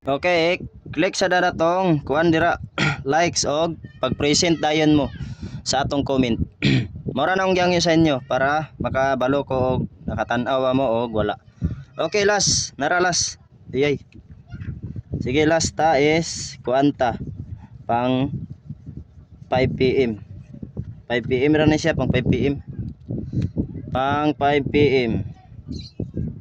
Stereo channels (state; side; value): identical; both; correlation 1.00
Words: okay, click sa daratong kuan dira likes og pag-present dayon mo sa atong comment. Mura na akong gyangyo sa inyo para makabalo ko og nakatan-aw mo og wala. Okay last, nara last. Iyay. Sige last ta is kuanta pang 5 PM. 5 PM ra na siya pang 5 PM. Pang 5 PM.